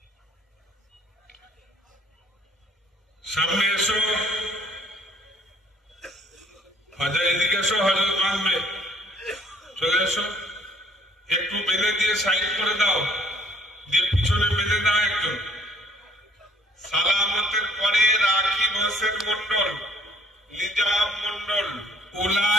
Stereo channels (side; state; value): both; normal; correlation 0.58